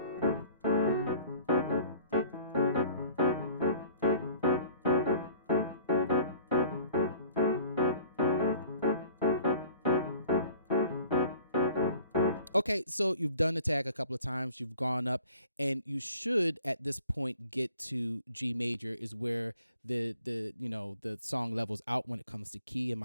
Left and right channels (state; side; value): inverted; both; correlation -0.50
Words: Okay, so you've done the tag a couple of times, you've gone up, and you should at this point get to G major, is where the song levels out when it comes to key and